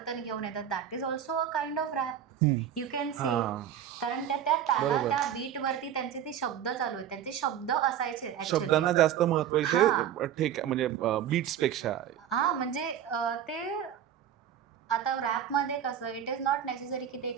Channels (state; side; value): quieter; left; 9.6 dB